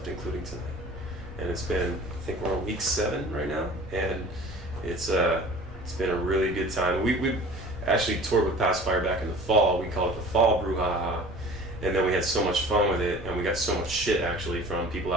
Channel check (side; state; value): both; normal; correlation 0.44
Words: including tonight, and it's been, I think we're on week 7 right now, and it's been a really good time. We actually toured with Pacifier back in the fall. We call it the Fall Brew Haha, and then we had so much fun with it, and we got so much shit actually from people